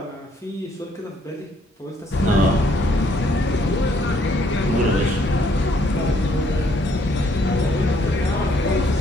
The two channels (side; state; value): both; normal; correlation 0.67